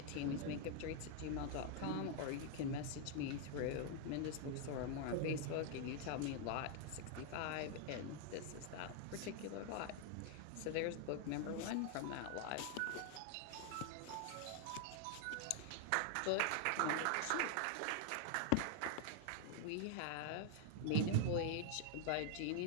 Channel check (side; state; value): both; different; correlation 0.00